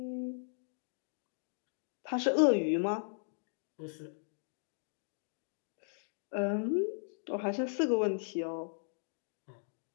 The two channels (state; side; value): silent; right; digital silence